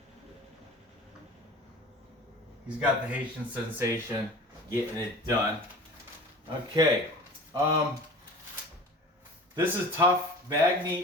He's got the Haitian sensation getting it done. Okay. This is tough.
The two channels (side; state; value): both; normal; correlation 0.39